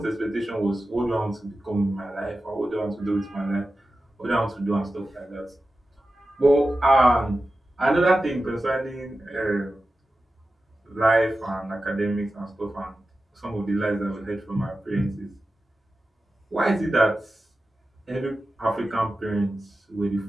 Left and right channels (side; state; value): both; normal; correlation 0.93